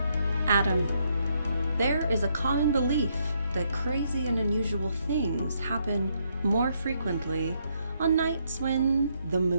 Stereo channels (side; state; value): both; inverted; correlation -0.75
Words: Adam, there is a common belief that crazy and unusual things happen more frequently on nights when the